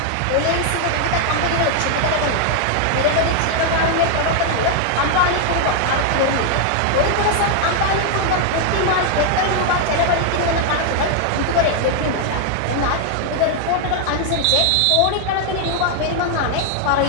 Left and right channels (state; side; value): different; both; correlation 0.00